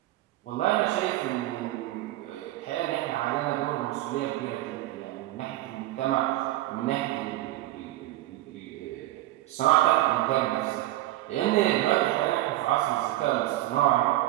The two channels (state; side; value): quieter; left; 16.0 dB